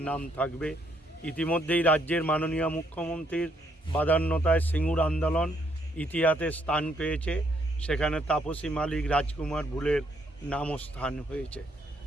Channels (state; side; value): normal; both; correlation 0.72